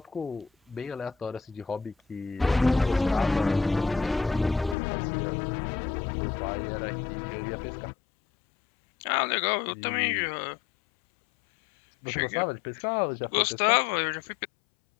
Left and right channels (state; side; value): drops out; right; at 4.8 s